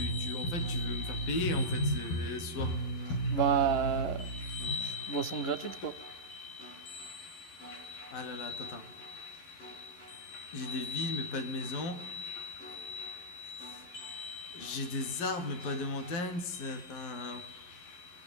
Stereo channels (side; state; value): right; late; 11 ms